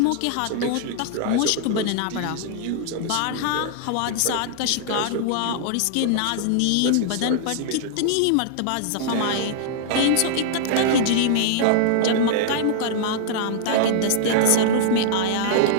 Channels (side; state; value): both; different; correlation -0.01